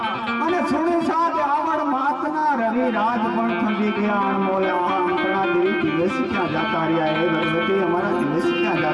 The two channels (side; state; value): both; identical; correlation 1.00